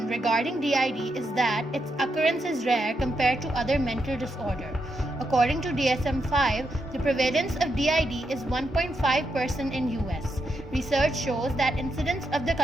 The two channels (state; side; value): normal; both; correlation 0.83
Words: regarding DID is that its occurrence is rare compared to other mental disorder. According to DSM-5, the prevalence of DID is 1.5% in US. Research shows that incidence of the